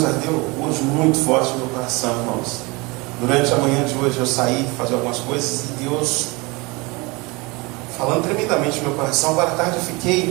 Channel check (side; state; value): left; quieter; 25.8 dB